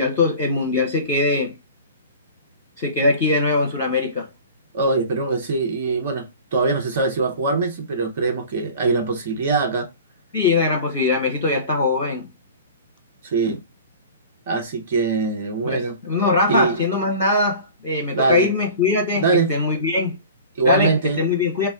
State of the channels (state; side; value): inverted; both; correlation -0.40